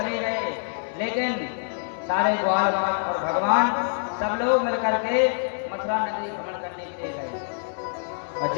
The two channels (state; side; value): silent; right; digital silence